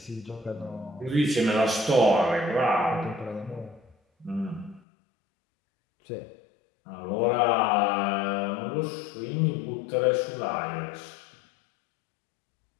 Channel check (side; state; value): right; drops out; at 4.8 s